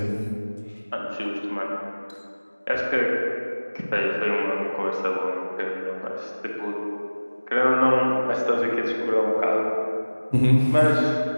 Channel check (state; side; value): inverted; both; correlation -1.00